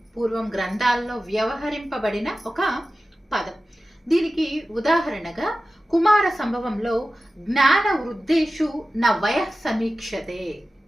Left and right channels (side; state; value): both; normal; correlation 0.94